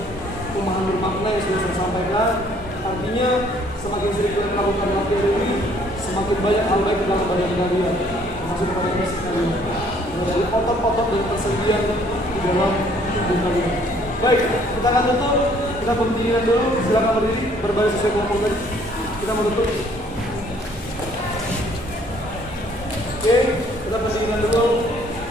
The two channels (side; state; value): both; normal; correlation 0.61